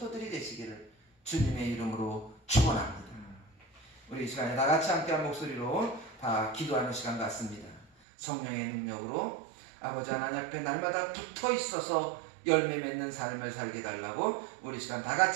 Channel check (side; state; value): left; drops out; at 7.9 s